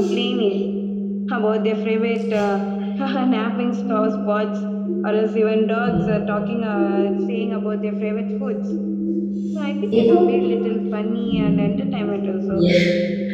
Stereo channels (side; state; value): both; identical; correlation 1.00